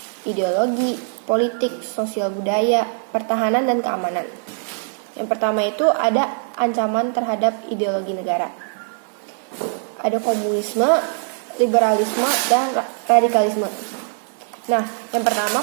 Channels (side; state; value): left; silent; digital silence